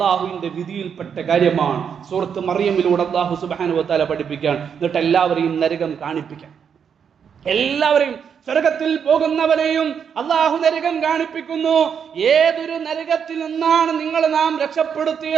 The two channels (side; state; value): left; quieter; 7.3 dB